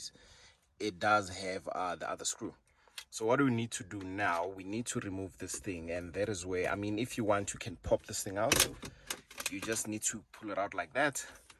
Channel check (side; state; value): both; identical; correlation 1.00